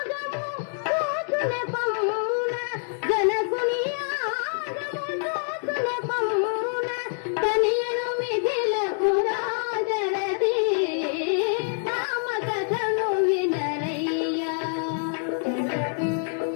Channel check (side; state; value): right; silent; digital silence